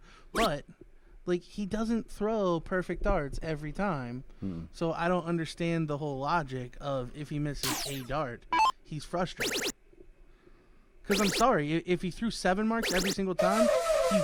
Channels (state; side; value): identical; both; correlation 1.00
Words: But like, he doesn't throw perfect darts every time. So I don't understand the whole logic of, if he misses a dart, he's frustrated. Because I'm sorry, if he threw 7 marks every single time,